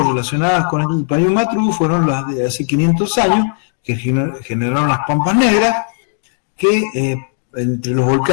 relacionadas con el Payún-Matru, fueron las de hace 500 años, que generaron las Pampas Negras, que entre los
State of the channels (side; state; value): right; silent; digital silence